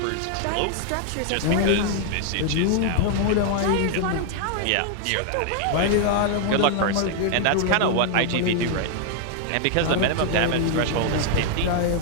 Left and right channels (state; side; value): different; both; correlation 0.00